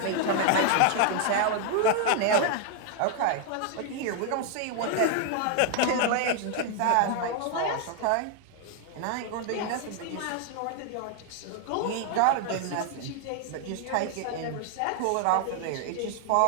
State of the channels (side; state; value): both; different; correlation 0.00